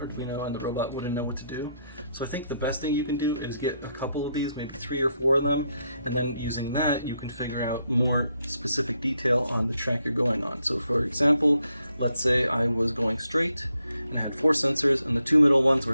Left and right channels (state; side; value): inverted; both; correlation -0.78